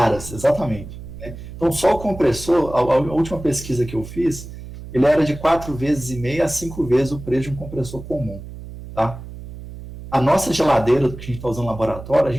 exatamente. Né? Então só o compressor, a última pesquisa que eu fiz, ele era de 4,5 vezes a 5 vezes o preço de um compressor comum, tá? A nossa geladeira que a gente está usando no laboratório, a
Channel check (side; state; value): right; noise; hum, 13 dB below the sound